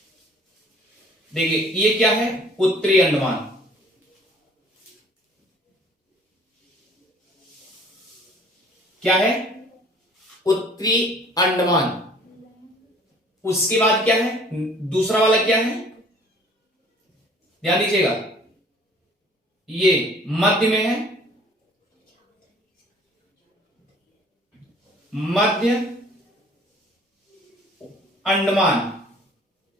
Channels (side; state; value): both; normal; correlation 0.54